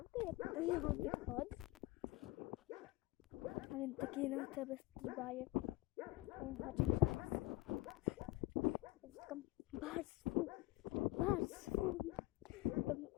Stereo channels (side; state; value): right; quieter; 18.6 dB